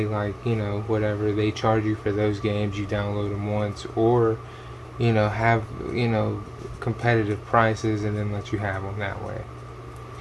like, whatever, they charge you for those games, you download them once, or, have, competitive prices and then let you have them that way.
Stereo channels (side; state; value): both; identical; correlation 1.00